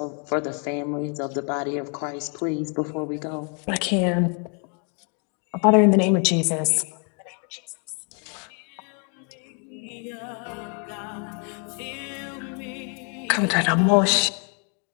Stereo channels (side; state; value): right; quieter; 39.8 dB